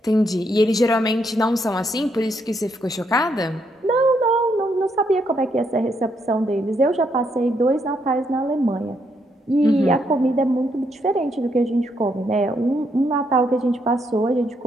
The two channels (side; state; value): both; normal; correlation 0.76